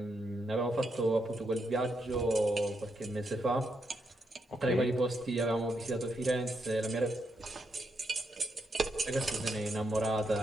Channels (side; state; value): both; normal; correlation 0.81